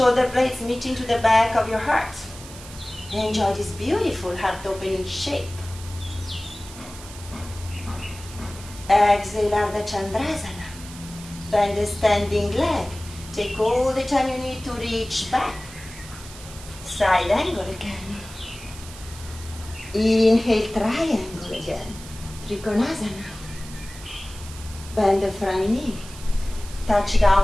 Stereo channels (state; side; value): noise; right; hiss, 16 dB below the sound